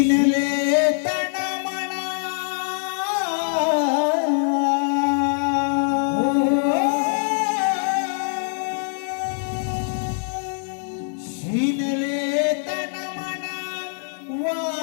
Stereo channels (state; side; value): silent; right; digital silence